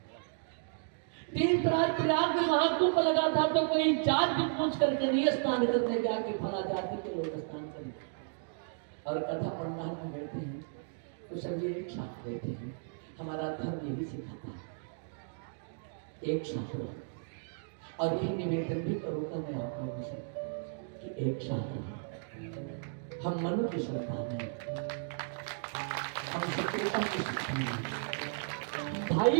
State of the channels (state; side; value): silent; left; digital silence